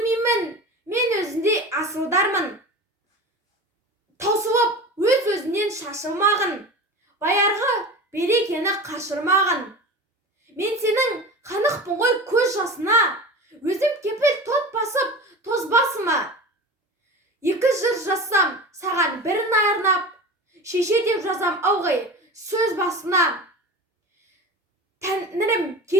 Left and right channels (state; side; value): normal; both; correlation 0.32